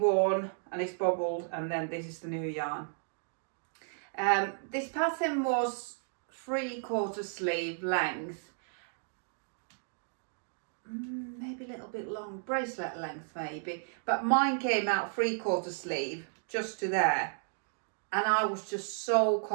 and it's bobbled, and then this is the new yarn. This pattern was 3/4 sleeve length, maybe a little bit long, bracelet length maybe, but mine came out 3/4 sleeve just to there, and I was just so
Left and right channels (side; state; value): left; silent; digital silence